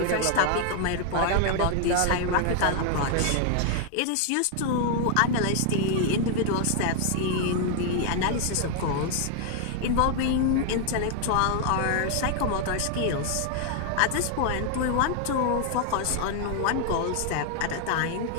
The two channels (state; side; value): different; both; correlation 0.00